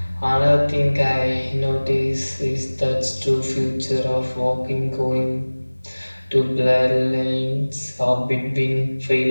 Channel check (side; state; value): both; inverted; correlation -1.00